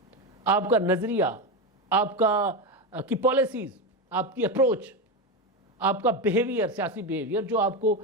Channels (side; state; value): both; normal; correlation 0.15